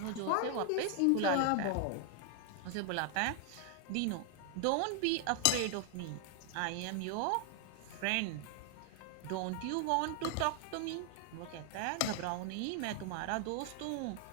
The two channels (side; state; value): both; different; correlation 0.00